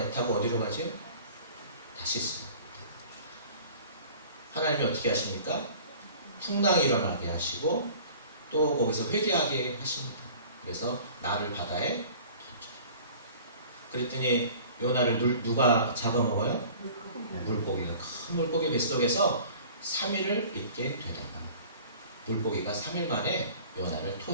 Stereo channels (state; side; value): inverted; both; correlation -0.46